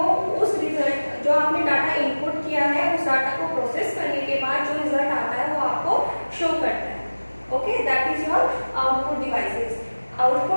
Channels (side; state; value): both; inverted; correlation -1.00